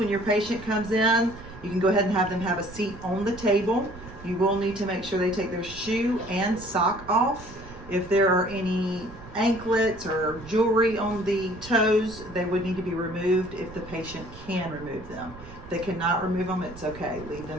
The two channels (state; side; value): noise; right; rumble, 17 dB below the sound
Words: your patient comes in, you can go ahead and have them have a seat on the table. You will need to make sure they take their shoe and sock off. If there are any anklets or jewelry on the toes, they would need to be removed if the patient can remove them. If they cannot remove them, it's okay. Leave